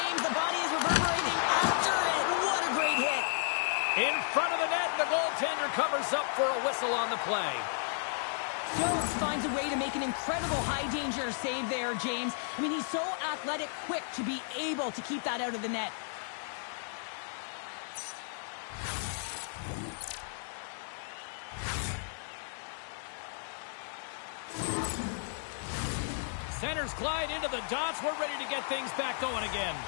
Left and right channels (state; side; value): silent; right; digital silence